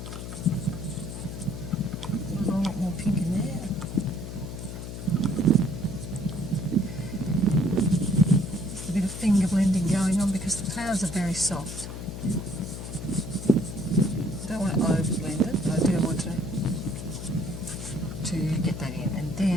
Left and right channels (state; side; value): noise; left; hum, 8 dB below the sound